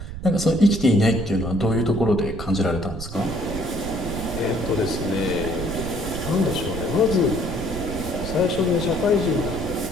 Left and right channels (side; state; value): right; noise; rumble, 9 dB below the sound